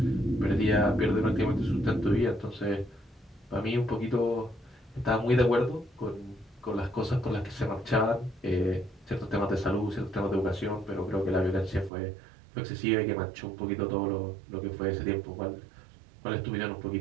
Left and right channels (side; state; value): left; drops out; at 11.9 s